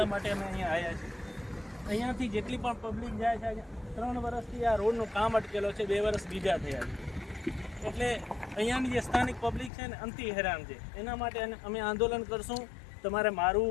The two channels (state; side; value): drops out; right; at 9.7 s